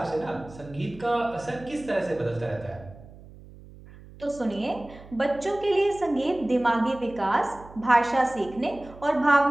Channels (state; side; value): noise; right; hum, 19 dB below the sound